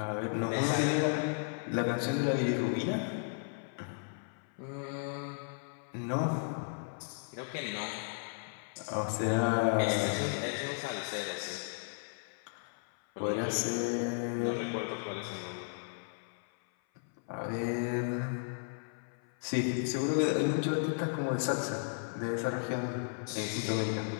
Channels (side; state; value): right; silent; 55 dB below the other